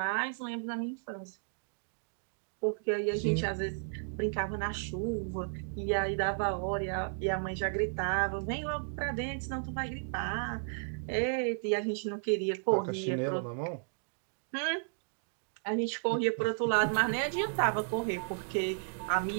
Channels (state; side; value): silent; left; digital silence